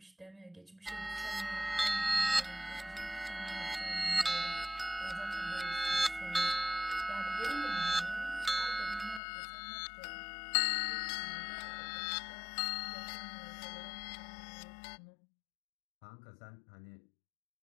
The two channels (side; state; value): right; drops out; at 9.2 s